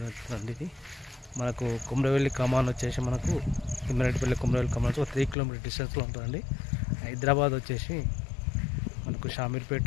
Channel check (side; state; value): right; drops out; at 5.4 s